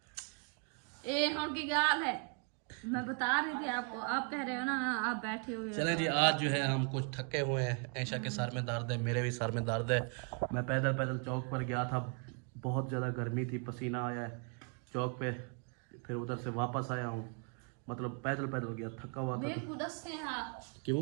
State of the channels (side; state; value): left; quieter; 38.1 dB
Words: ये उनकी गाल है, मैं बता रही थी आपको, आप कह रहे हो ना आप बैठे हुए हो। चले जी, आज जो है हम कुछ थके हुए हैं, ऐशा के सर में दर्द है, मेरे भी सर में दर्द है। मैं पैदल पैदल चौक पर गया था, बहुत ज़्यादा गर्मी थी, पसीना आया है चौक पे, फिर उधर से वापस आया हूँ, मतलब पैदल पैदल गया, थका हुआ था। क्यों?